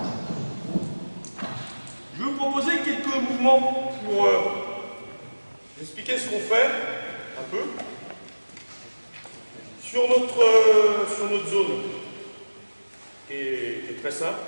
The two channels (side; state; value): both; inverted; correlation -1.00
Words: Je vais vous proposer quelques mouvements pour expliquer ce qu'on fait un peu sur notre zone qui est très simple.